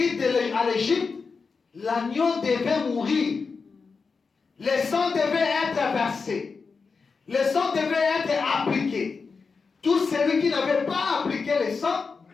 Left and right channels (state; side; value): quieter; right; 4.9 dB